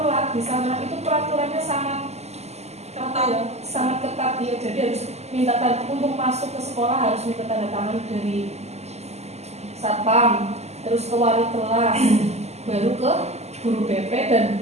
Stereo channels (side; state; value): left; late; 0.32 ms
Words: di sana itu peraturannya sangat ketat ya. Jadi harus minta tanda untuk masuk ke sekolah, harus minta tanda tangan dari satpam, terus ke wali kelas, baru ke guru BP